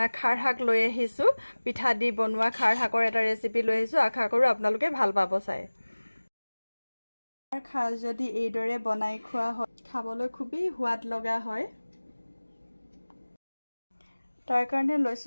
খাৰ শাক লৈ আহিছো, পিঠা দি বনোৱা খাৰ শাকৰ এটা ৰেচিপি লৈ আহিছো। আশা কৰো আপোনালোকে ভাল পাব চাই। খাৰ যদি এইদৰে বনাই খোৱা হয় খাবলৈ খুবেই সোৱাদ লগা হয়। তাৰ কাৰণে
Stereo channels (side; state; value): both; inverted; correlation -1.00